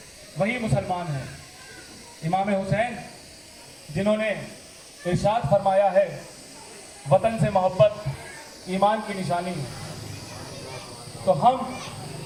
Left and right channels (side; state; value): both; identical; correlation 1.00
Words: वही मुसलमान है। इमाम हुसैन जिन्होंने इरशाद फरमाया है, वतन से मोहब्बत ईमान की निशानी है। तो हम